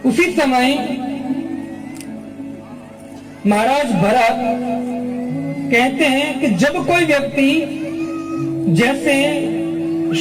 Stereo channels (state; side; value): identical; both; correlation 1.00